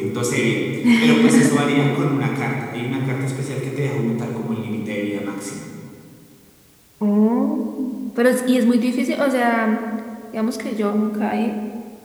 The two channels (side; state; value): both; identical; correlation 1.00